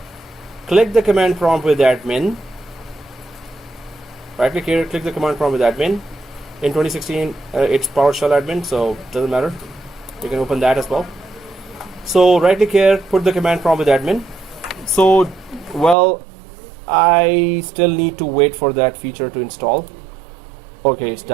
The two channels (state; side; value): drops out; left; at 16.0 s